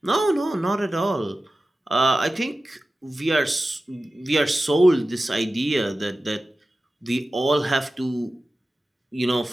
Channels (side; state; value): both; normal; correlation 0.95